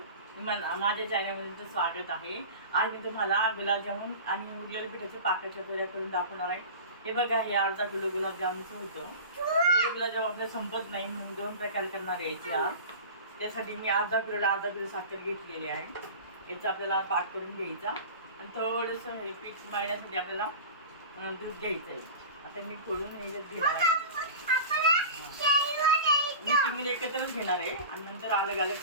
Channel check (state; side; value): inverted; both; correlation -0.34